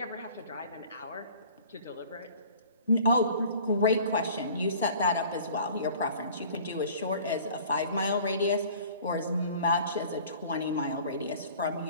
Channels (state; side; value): inverted; both; correlation -0.48